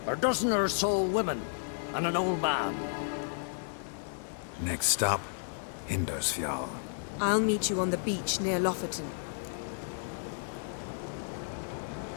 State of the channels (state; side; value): silent; right; digital silence